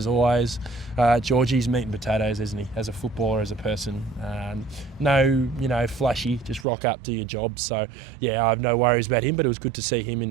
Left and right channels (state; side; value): drops out; left; at 6.7 s